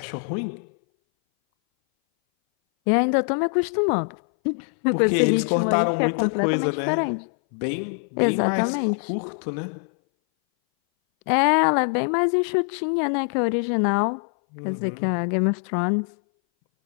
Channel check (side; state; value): right; silent; 60 dB below the other